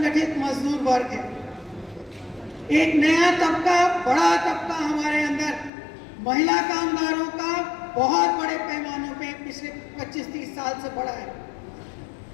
मजदूर वर्ग है। एक नया तबका, बड़ा तबका हमारे अंदर, महिला कामगारों का बहुत बड़े पैमानों पे पिछले 25-30 साल से बढ़ा है।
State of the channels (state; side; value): drops out; right; at 5.7 s